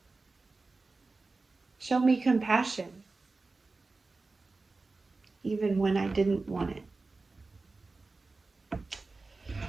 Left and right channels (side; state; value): left; quieter; 3.7 dB